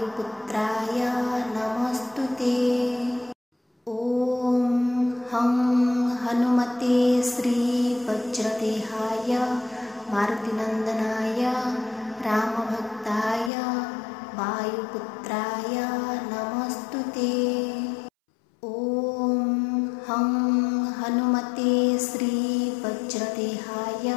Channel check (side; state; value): right; drops out; at 13.5 s